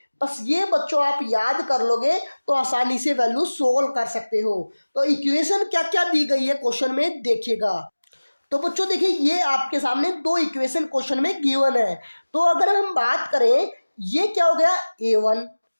बस ये बच्चों आप याद कर लोगे तो आसानी से वैल्यू सोल्व कर सकते हो। तो इक्वेशन क्या क्या दी गई है क्वेश्चन में देखिएगा। तो बच्चों देखिए ये आपके सामने दो इक्वेशन क्वेश्चन में गिवन है। तो अगर हम बात करें, ये क्या हो गया a1,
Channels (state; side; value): inverted; both; correlation -1.00